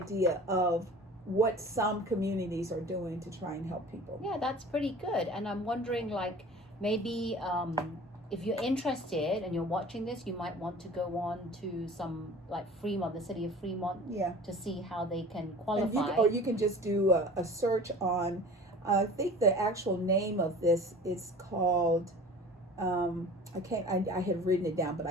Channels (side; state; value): both; normal; correlation 0.42